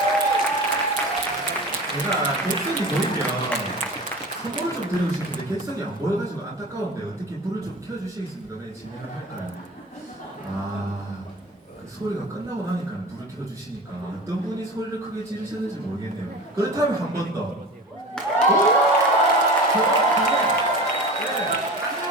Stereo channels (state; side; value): normal; both; correlation 0.34